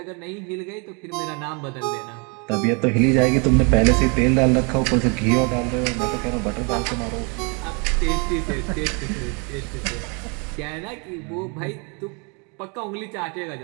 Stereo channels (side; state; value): left; quieter; 33.8 dB